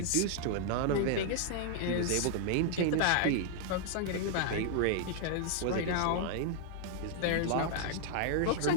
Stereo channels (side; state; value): both; different; correlation -0.01